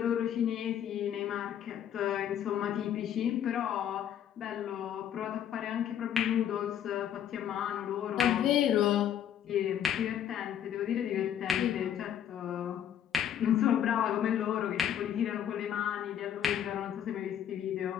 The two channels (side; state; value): right; quieter; 9.8 dB